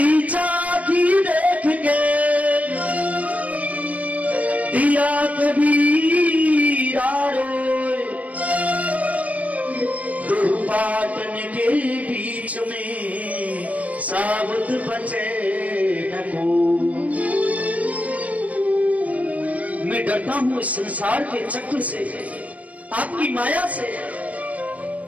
चाकी देख के दिया कबीरा रोए, दो पाटन के बीच में साबुत बचे न को। मैं डरता हूं इस संसार के चक्र से, आपकी माया से।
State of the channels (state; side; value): late; left; 0.070 ms